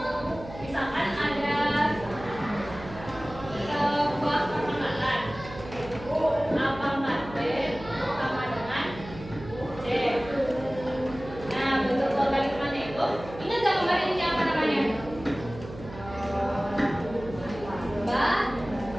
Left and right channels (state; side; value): noise; right; hum, 14 dB below the sound